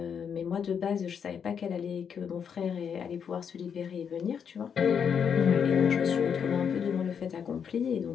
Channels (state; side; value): quieter; right; 7.3 dB